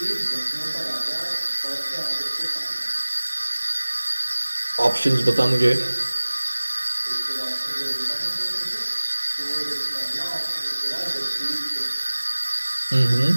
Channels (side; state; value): both; inverted; correlation -1.00